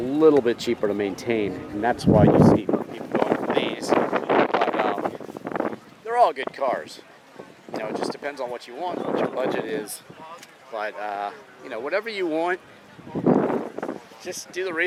bit cheaper to maintain, and that's why you see people going for these. But they're all good cars. You know, it just depends on what you want, what your budget is. But you know, whatever you want, just do the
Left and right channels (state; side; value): identical; both; correlation 1.00